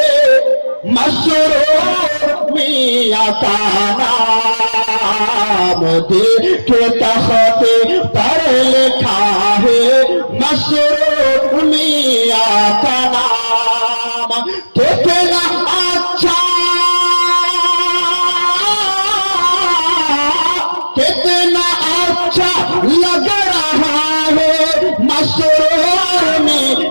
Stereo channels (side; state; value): both; inverted; correlation -1.00